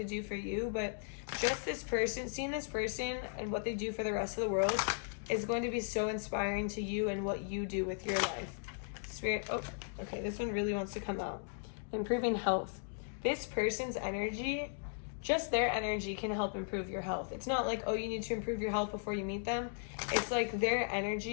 do for you, but just this person, seeing this person and what they do for the rest of the world is going to be so inspiring to you and what you do with your life. Spirit, oh, okay, this one really wants to come out. Improving health. This person's energy, just their energy can help improve your health. It's not like, oh, you need to improve your health before you meet them. It's like their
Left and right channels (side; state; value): right; silent; digital silence